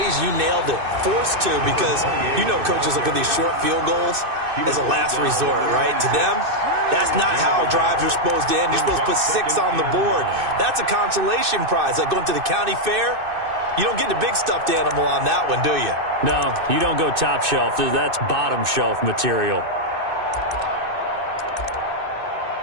you nailed it, forced to, because you know coaches look at these short field goals as a last resort, right? To them, that's not how drives are supposed to end. You're supposed to put 6 on the board. That's a consolation prize. Like going to the county fair, you don't get the big stuffed animal on that one, do you? No, you don't go top shelf. That's bottom shelf material.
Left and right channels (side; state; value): left; late; 2.6 ms